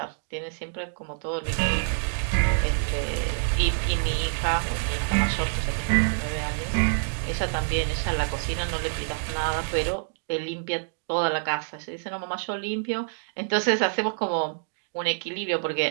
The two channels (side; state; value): left; silent; digital silence